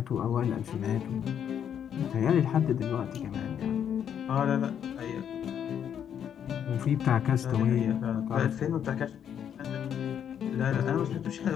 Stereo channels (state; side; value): quieter; right; 8.8 dB